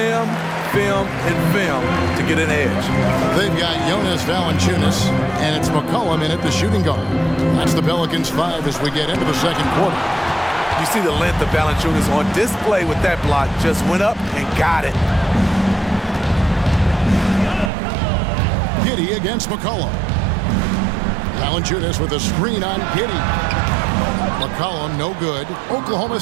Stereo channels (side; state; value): left; drops out; at 17.7 s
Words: and film to get an edge. They've got Jonas Valanciunas, and it's McCollum in at the shooting guard. That's the Pelicans 5 as we get into the second quarter. You see the length of Valanciunas on display with that block. Just went up and got it. Giddey against McCollum. Valanciunas with a screen on Giddey. McCollum no good. Oklahoma